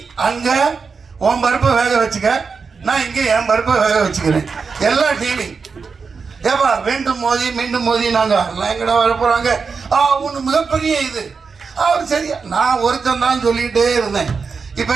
அங்க உன் பருப்பை வேக வச்சுக்க, நான் இங்க என் பருப்பை வேக வச்சுக்கிறேன். எல்லாம் டீலிங். ஏப்பா வேண்டும் மோதி மீண்டும் மோதி நாங்க எங்கடா வர போறாங்க? ஒன்று மிகப்பெரிய இது. அவர் சரியா நான் ஒருத்தன் தான் சொல்லிக்கிட்டே இருந்தேன். இப்போ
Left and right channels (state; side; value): quieter; left; 5.2 dB